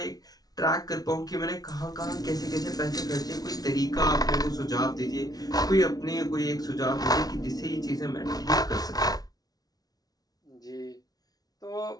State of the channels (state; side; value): late; right; 0.19 ms